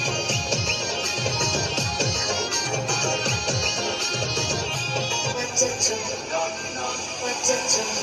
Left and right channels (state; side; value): identical; both; correlation 1.00